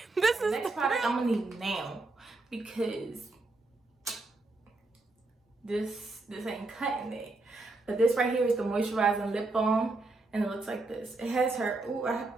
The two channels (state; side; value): quieter; left; 3.2 dB